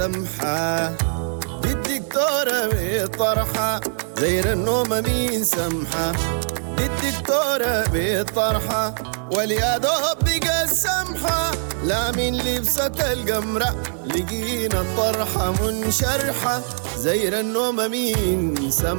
دي الدكتورة بطرحة. زير النوم مين سمحة دي الدكتورة بطرحة. واليا دوب بقى السمحة لا من لبسة القمرة لقينا الطرحة منشرحة. زير النوم مين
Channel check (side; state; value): left; silent; digital silence